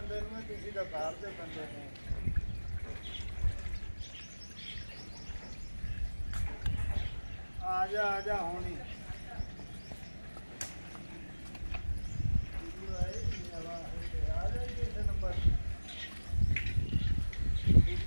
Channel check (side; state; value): both; inverted; correlation -1.00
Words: ਨੂੰ ਤੁਸੀਂ ਤਾਂ ਬਾਹਰ ਦੇ ਬੰਦੇ ਨੇ। ਆ ਜਾ ਹੁਣੀ ਆ ਜਾ ਕਿਸੇ ਨੰਬਰ